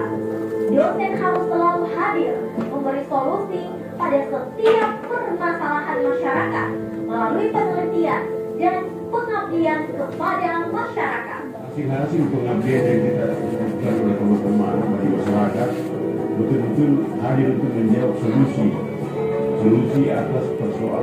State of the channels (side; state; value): both; identical; correlation 1.00